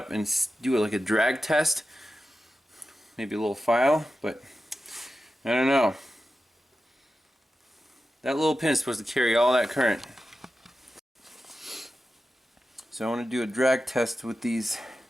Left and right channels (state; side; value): normal; both; correlation 0.92